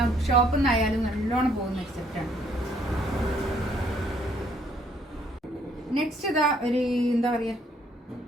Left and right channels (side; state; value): both; normal; correlation 0.66